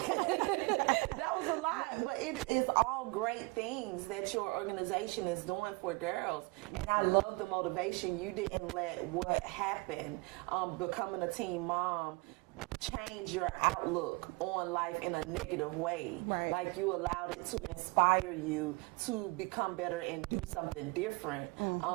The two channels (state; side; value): quieter; left; 26.6 dB